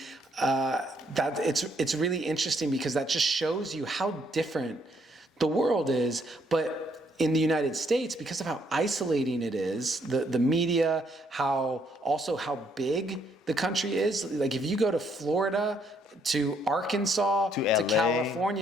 that it's really interesting because that just shows you how different the world is. But in the United States, because of how isolating it is, the media, how big the country is. Like if you go to Florida, to Arkansas, to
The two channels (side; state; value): both; normal; correlation 0.70